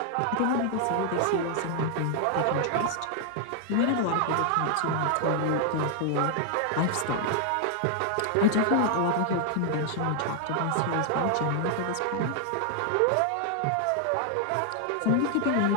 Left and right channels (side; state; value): both; different; correlation 0.00